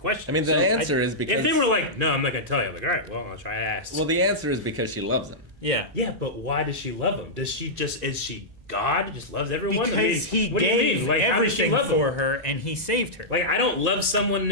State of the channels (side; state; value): both; normal; correlation -0.10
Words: I mean, the answer is because if they were like, no, I'm not gonna tell you. I'm like, all right, well, I'll try to ask. well, the answer is because she loves him. Yeah. yeah, but why does she love him? Does she just is she God? Just loves everyone? Because I mean, he what do you gave mean? Like, how does she everything love him? for her and he saved her. Like, I don't love someone in